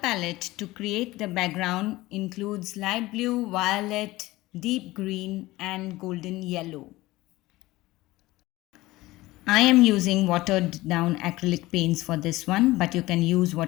to create the background includes light blue, violet, deep green and golden yellow. I am using watered down acrylic paints for this one, but you can use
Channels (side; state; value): right; quieter; 18.8 dB